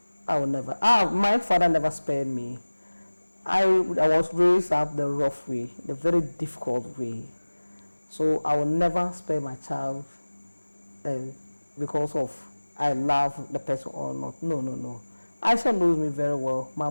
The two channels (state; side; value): inverted; both; correlation -1.00